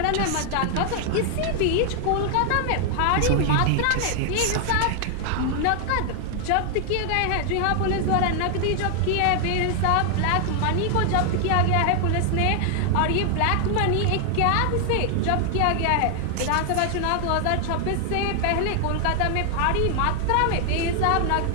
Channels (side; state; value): both; different; correlation 0.00